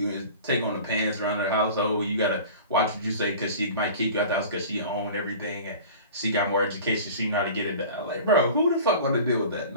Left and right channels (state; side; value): inverted; both; correlation -0.40